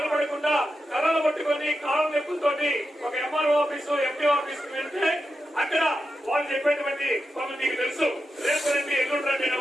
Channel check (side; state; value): both; normal; correlation 0.88